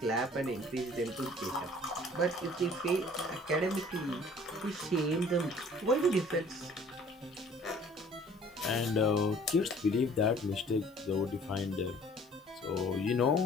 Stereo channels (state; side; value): normal; both; correlation 0.53